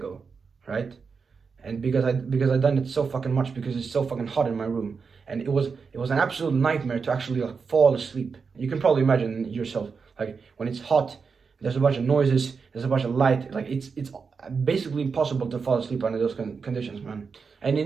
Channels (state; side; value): quieter; left; 5.3 dB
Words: right? And because I done it so fucking much because it's so fucking hot in my room, and it was an absolute nightmare to actually like fall asleep. You can probably imagine yourself, like when it's hot, there's a bunch of noises, there's a bunch of light, like it's basically impossible to fall asleep under those conditions, man. And